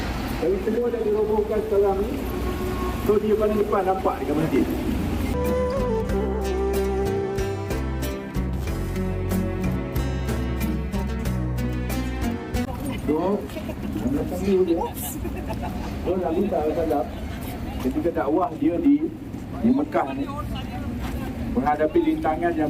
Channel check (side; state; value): both; identical; correlation 1.00